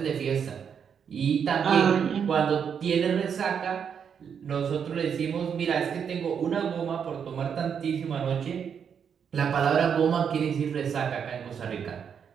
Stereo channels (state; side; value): quieter; left; 7.3 dB